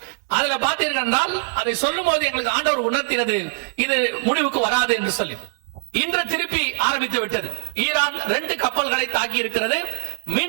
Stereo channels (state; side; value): silent; left; digital silence